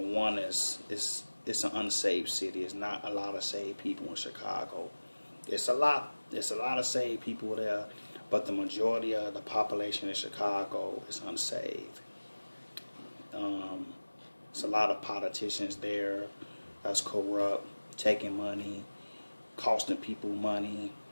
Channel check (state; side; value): inverted; both; correlation -1.00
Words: it's an unsaved city. It's not a lot of saved people in Chicago. It's a lot of saved people there, but the majority of the population in Chicago is unsaved. It's a lot of politicians there that's corrupt, taking money, costing people money.